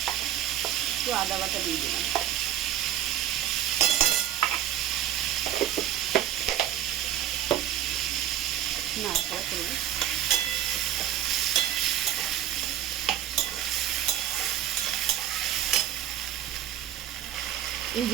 একটু আদা বাটা দিয়ে দিলাম। নাড়াচাড়া করবো। এই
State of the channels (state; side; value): quieter; left; 11.5 dB